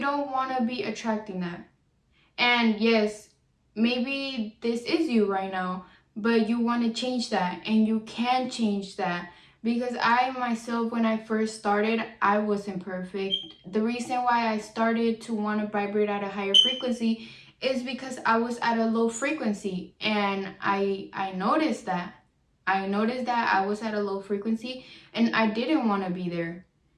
want to be attracting that. And yes, maybe this is you right now, but you want to change that, and you can change that. Because I myself, when I first started, I wasn't perfect. The reason why I started to want to vibrate at a higher frequency is because I was at a low frequency, and I noticed that. I noticed that I was at a low frequency and I didn't want to be there.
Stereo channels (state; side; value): identical; both; correlation 1.00